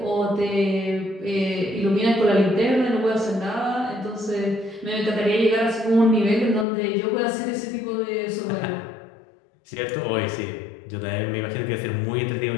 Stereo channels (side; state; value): right; drops out; at 6.7 s